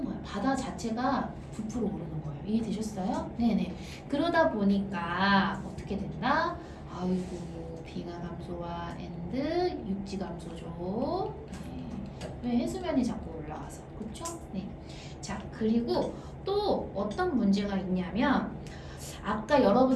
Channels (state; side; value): identical; both; correlation 1.00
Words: 거야. 바다 자체가 부풀어 오르는 거예요. 이해되셨어요? 네네. 그러다 보니까 어떻게 된다? 아이고 빙하 감소와 엔드 육지 감소죠. 네. 왜 해수면이 자꾸 올라가서 그렇죠? 네. 자 그리고 또 어떤 문제가 있냐면 아까